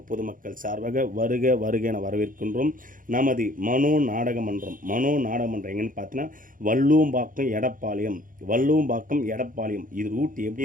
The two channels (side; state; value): left; late; 0.40 ms